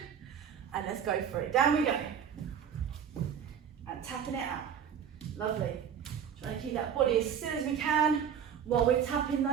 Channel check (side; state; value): left; quieter; 8.2 dB